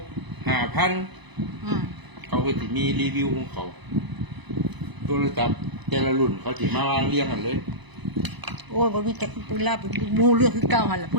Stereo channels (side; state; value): left; late; 1.0 ms